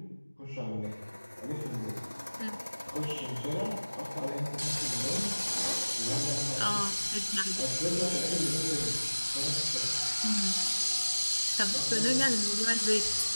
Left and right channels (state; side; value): inverted; both; correlation -1.00